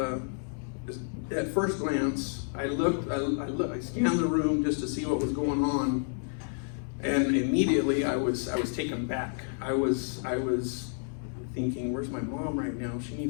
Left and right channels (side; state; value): right; silent; digital silence